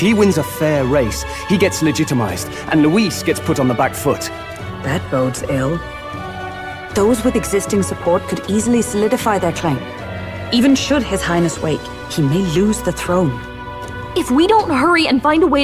wins a fair race, he gets legitimized, and Luis gets put on the back foot. That bodes ill. Those with existing support could easily solidify their claim. Even should His Highness wake, he may lose the throne. If we don't hurry and find a way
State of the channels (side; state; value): both; identical; correlation 1.00